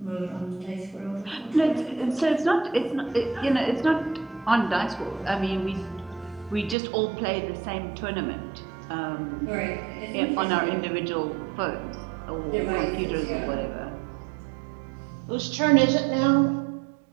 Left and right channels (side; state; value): left; drops out; at 6.8 s